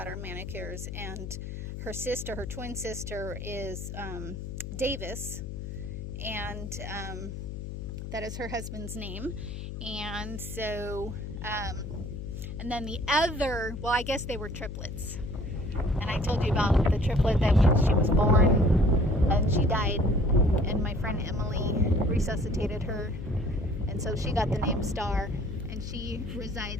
our manicures, and her twin sister is Davis, and that is her husband's name. And so and then the other, well, I guess they were triplets, and I told you about the triplet that when she was born and she died, and my friend Emily resuscitated her, and so she got the name Star, and she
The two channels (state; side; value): noise; left; hum, 7 dB below the sound